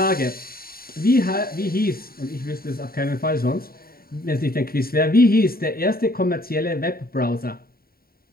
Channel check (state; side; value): late; right; 0.43 ms